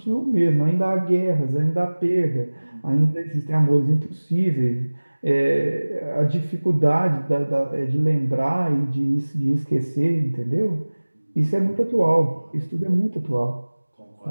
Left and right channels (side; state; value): both; inverted; correlation -1.00